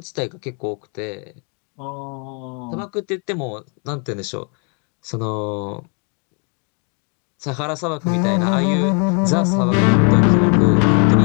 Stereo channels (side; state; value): right; quieter; 38.5 dB